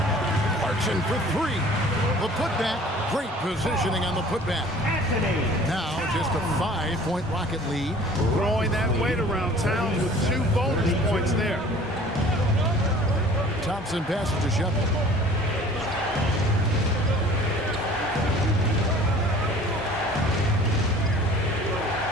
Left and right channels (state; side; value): normal; both; correlation 0.49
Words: Clarkson for 3. The putback. Great positioning on the putback. Now just a 5-point Rocket lead. Throwing that weight around. Towns with 2 bonus points there. Thompson passes to Shepard.